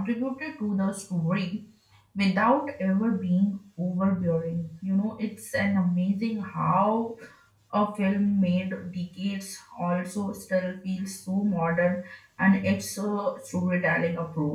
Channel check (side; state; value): both; identical; correlation 1.00